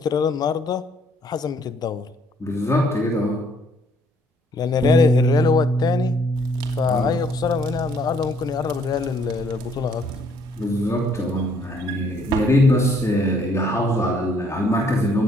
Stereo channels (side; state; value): both; normal; correlation 0.65